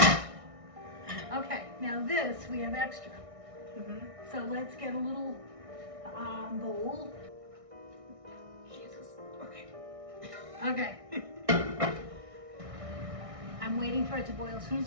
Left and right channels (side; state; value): left; late; 1.6 ms